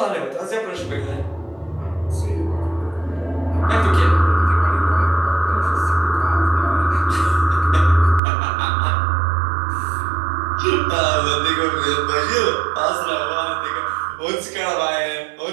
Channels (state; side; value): drops out; left; at 8.2 s